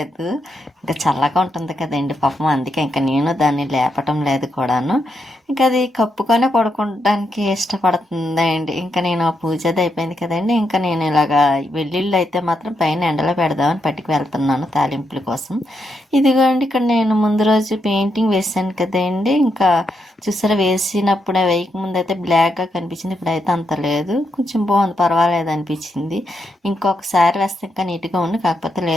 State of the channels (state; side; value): normal; both; correlation 0.81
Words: ఇంకా చల్లగా ఉంటుంది కదండి పాపం, అందుకే ఇంకా నేను దాన్ని లేపటం లేదు కూడాను. ఇంకా అది కప్పుకొనే పడుకోవడానికి ఇష్టపడుతుందండి. ఇంకా నేను పూజ అది అయిపోయింది కదండి. ఇంకా నేను ఇలాగా వెల్లుల్లి అయితే మాత్రం పైన ఎండలో పెడదామని పట్టుకు వెళ్తున్నాను తాలింపుల కోసం. ఇదిగోండి ఇక్కడ నేను ముందు రోజు పెయింటింగ్ వేసాను కదండి. ఇంకా చూసారా వేసినప్పుడే వేయకముందు అయితే బ్లాక్గా కనిపించింది, ఇప్పుడైతే అంత లేదు, కొంచెం బాగుంది, పర్వాలేదు అనిపించింది. ఇంకొకసారి వేస్తే ఇంకా నీట్గా ఉంది, కాకపోతే